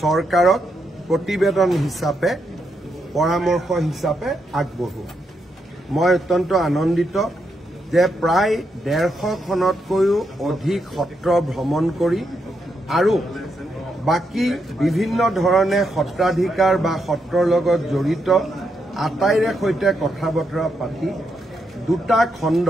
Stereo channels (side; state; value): both; normal; correlation 0.81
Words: চৰকাৰক প্ৰতিবেদন হিচাপে পৰামৰ্শ হিচাপে আগবঢ়োৱা। মই অত্যন্ত আনন্দিত যে প্ৰায় 150খনতকৈও অধিক সত্ৰ ভ্ৰমণ কৰি আৰু বাকি বিভিন্ন ধৰণে সত্ৰাধিকাৰ বা সত্ৰৰ লগত জড়িত আটাইৰে সৈতে কথা বতৰা পাতি দুটা